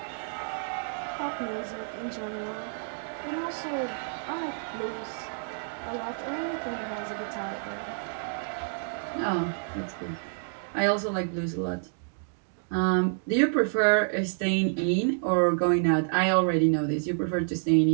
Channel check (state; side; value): silent; left; digital silence